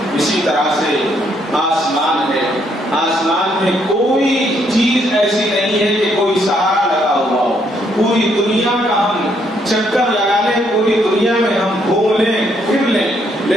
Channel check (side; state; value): both; normal; correlation 0.72